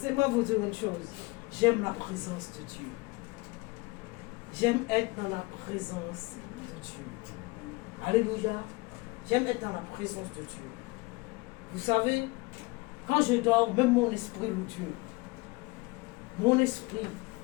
vous dire une chose. J'aime la présence de Dieu. J'aime être dans la présence de Dieu. Alléluia. J'aime être dans la présence de Dieu. Vous savez, quand je dors, même mon esprit loue Dieu. Mon esprit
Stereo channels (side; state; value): right; quieter; 24.7 dB